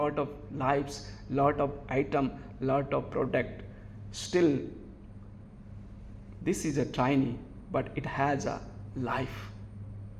of lives, lot of item, lot of product. Still, this is a tiny, but it has a life.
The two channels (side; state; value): both; identical; correlation 1.00